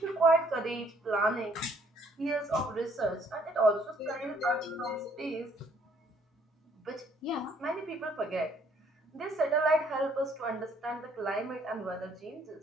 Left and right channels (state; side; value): normal; both; correlation 0.64